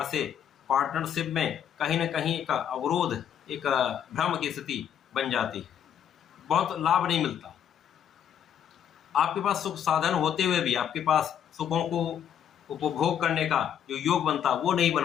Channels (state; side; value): quieter; right; 9.2 dB